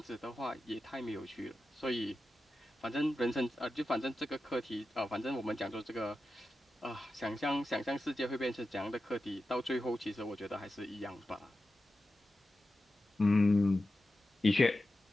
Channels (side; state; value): both; normal; correlation 0.92